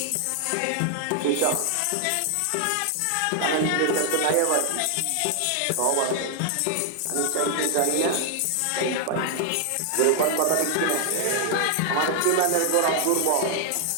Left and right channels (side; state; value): both; different; correlation 0.00